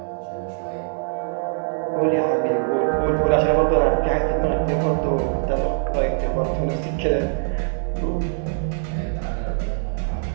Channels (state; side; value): silent; left; 58 dB below the other